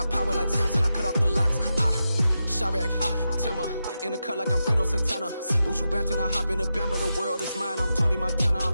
power like Samson, I cut off the locks. Chirac, Timmer, in the cut like I'm Fredo Santana. Buju Banton, I hop in the Bama, the world is mine. I'm Tony Montana,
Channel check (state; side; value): inverted; both; correlation -0.89